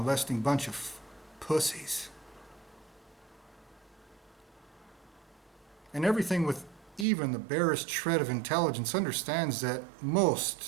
bunch of pussies. And everything with even the barest shred of intelligence understands that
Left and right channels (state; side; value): drops out; left; at 7.1 s